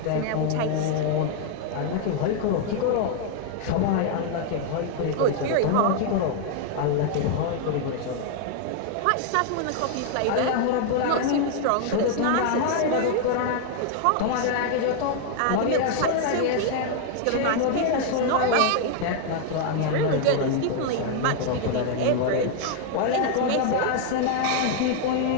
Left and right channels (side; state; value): both; different; correlation 0.00